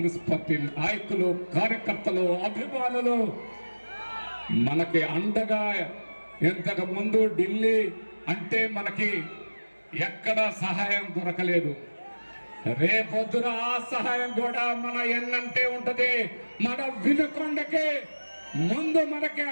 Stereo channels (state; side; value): inverted; both; correlation -1.00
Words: పార్టీ నాయకులు, కార్యకర్తలు, అభిమానులు మనకి అండగా. ఇంతకు ముందు ఢిల్లీ అంటే మనకి ఎక్కడా సహాయం దొరకలేదు. రేపొద్దున ఆ సహాయం కూడా మన ఎన్నంటే ఉంటది. మన వినుకొండకి ముందు మనకి